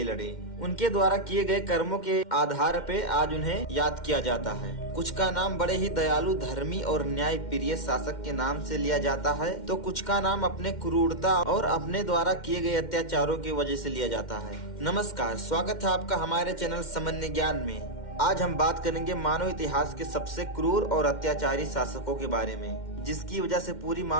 लड़े। उनके द्वारा किए गए कर्मों के आधार पे आज उन्हें याद किया जाता है। कुछ का नाम बड़े ही दयालु, धर्मी और न्याय प्रिय शासक के नाम से लिया जाता है, तो कुछ का नाम अपने क्रूरता और अपने द्वारा किए गए अत्याचारों की वजह से लिया जाता है। नमस्कार, स्वागत है आपका हमारे चैनल सामान्य ज्ञान में। आज हम बात करेंगे मानव इतिहास के सबसे क्रूर और अत्याचारी शासकों के बारे में, जिसकी वजह से पूरी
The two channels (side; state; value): right; late; 2.1 ms